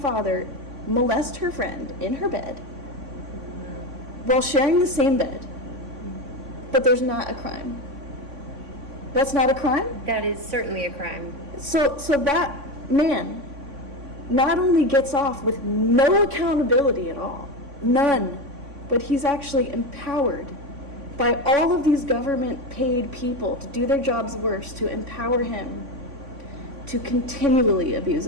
molest her friend in her bed while sharing the same bed, but there's not a crime? That's not a crime? That is certainly a crime. So that man not only gets off with no accountability at all, none, but he's actually empowered by all of these government paid people to do their jobs worse, to empower him to continually abuse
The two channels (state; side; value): late; left; 3.5 ms